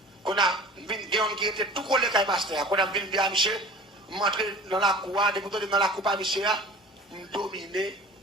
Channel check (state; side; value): normal; both; correlation 0.42